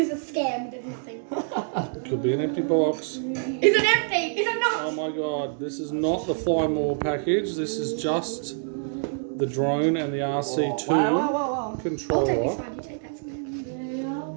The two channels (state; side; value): silent; left; digital silence